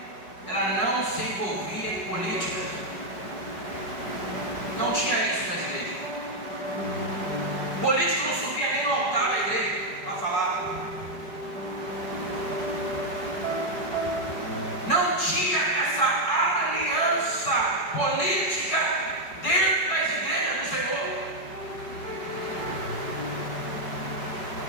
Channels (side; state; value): right; late; 5.1 ms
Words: ela não se envolvia em política. Não tinha isso na igreja. Político não subia nem no altar da igreja para falar. Não tinha essa aliança política dentro das igrejas do Senhor.